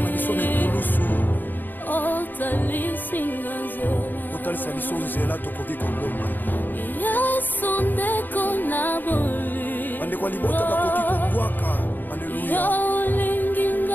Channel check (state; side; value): late; right; 0.090 ms